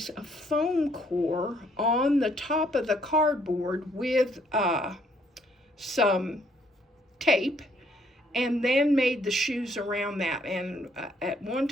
of foam core on the top of the cardboard with some tape, and then made the shoes around that. And at one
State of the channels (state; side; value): normal; both; correlation 0.67